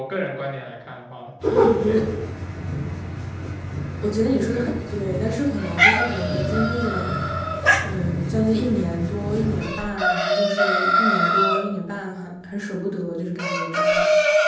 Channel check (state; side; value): identical; both; correlation 1.00